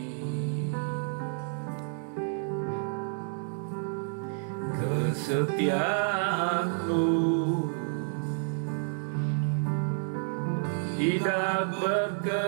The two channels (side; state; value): left; silent; digital silence